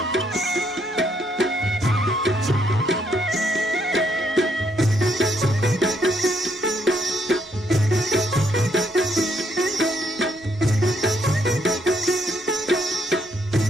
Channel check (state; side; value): normal; both; correlation 0.73